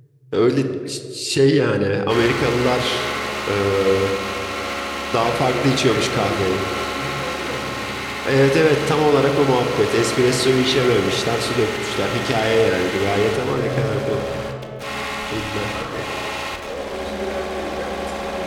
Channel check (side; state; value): both; identical; correlation 1.00